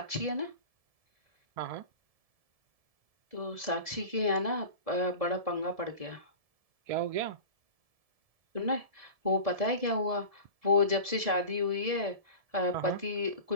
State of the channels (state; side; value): late; left; 1.7 ms